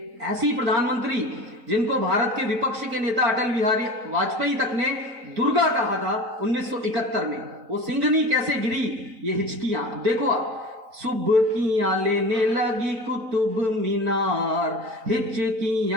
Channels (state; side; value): late; left; 4.4 ms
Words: ऐसी प्रधानमंत्री जिनको भारत के विपक्ष के नेता अटल बिहारी वाजपेयी तक ने दुर्गा कहा था 1971 में, वो सिंहनी कैसे गिरी, ये हिचकियां देखो आप। सुबकियां लेने लगी कुतुब मीनार,